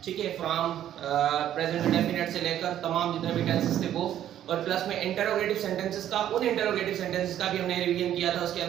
ठीक है, फ्रॉम प्रेजेंट इंडेफिनिट से लेकर तमाम जितने भी टेंसेस थे वो, और प्लस में इंटरोगेटिव सेंटेंसेस का, उन इंटरोगेटिव सेंटेंसेस का भी हमने रिवीजन किया था, उसके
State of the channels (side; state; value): left; quieter; 11.3 dB